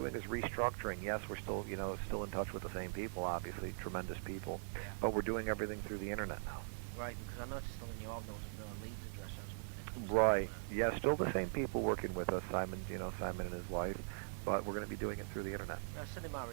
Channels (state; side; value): silent; left; digital silence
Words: is restructuring. Yes, we're still, still in touch with the same people, obviously, tremendous people, Yeah. but we're doing everything through the internet now. Right, because I noticed on the new album there wasn't no Leeds address. I was wondering if there was Right. something Yeah, still the same people working with us. Simon and his wife, but we're going to be doing it through the internet. send him my